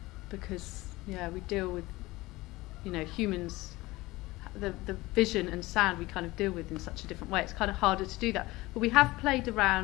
Because we deal with humans, the vision and sound we kind of deal with in such a different way. It's kind of harder to do that. But we have played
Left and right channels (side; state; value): right; quieter; 20.0 dB